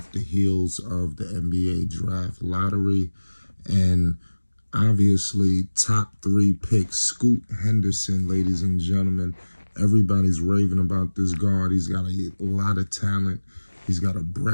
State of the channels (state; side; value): inverted; both; correlation -1.00